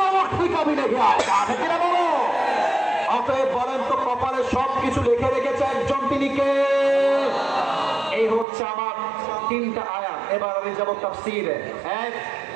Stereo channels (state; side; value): drops out; left; at 8.5 s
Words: वक्त भी कभी नहीं आएगा। অতএব বলেন তো কপালে সবকিছু লিখে রেখেছে একজন, তিনি কে? এই হচ্ছে আমার 3টা আয়াত। এবার আমি যাব তাফসীরে। এক